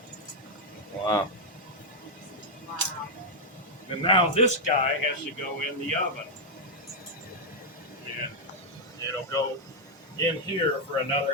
Wow. Wow. And now this guy has to go in the oven. And it'll go in here for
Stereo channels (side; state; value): both; normal; correlation -0.01